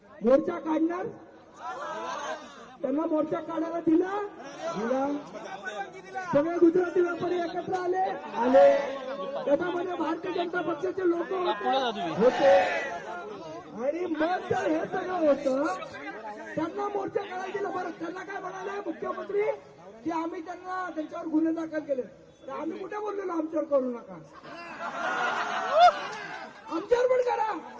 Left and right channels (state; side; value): identical; both; correlation 1.00